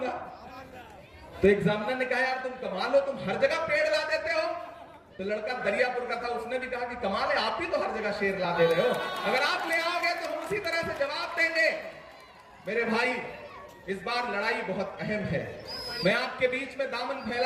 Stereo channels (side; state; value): both; identical; correlation 1.00